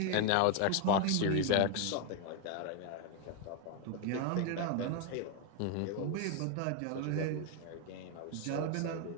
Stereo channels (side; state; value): both; different; correlation 0.01